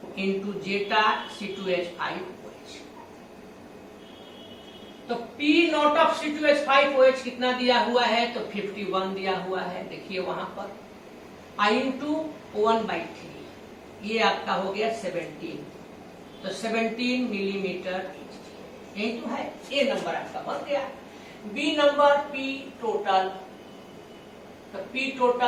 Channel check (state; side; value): identical; both; correlation 1.00